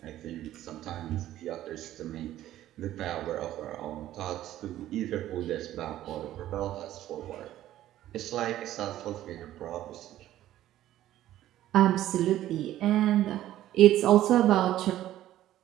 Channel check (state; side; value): quieter; left; 13.4 dB